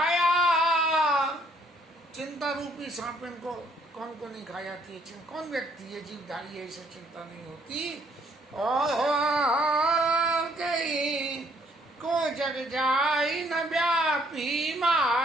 चिंता रूपी सांपिन को कौन को नहीं खा जाती है। कौन व्यक्ति है जीवधारी है इसे चिंता नहीं होती। और कहीं को जग जाई न व्यापी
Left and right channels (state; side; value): normal; both; correlation 0.66